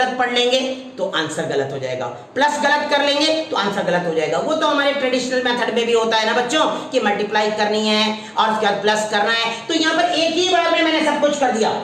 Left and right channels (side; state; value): both; identical; correlation 1.00